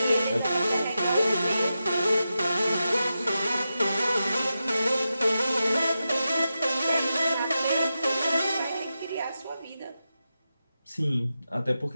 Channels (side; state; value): both; inverted; correlation -0.90